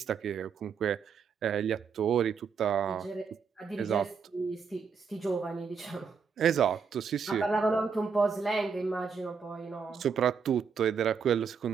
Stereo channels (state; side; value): quieter; left; 6.0 dB